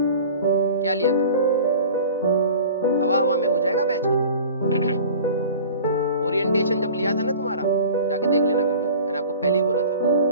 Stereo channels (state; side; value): inverted; both; correlation -0.42